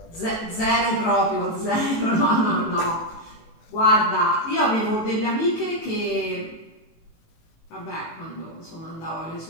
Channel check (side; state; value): right; late; 18 ms